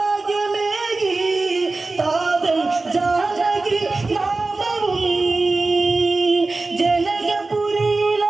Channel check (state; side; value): quieter; left; 3.4 dB